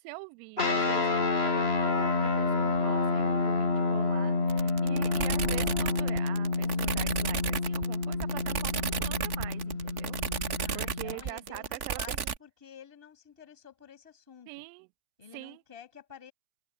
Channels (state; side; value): late; left; 3.5 ms